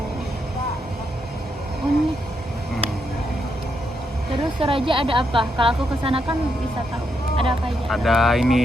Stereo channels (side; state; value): both; normal; correlation 0.80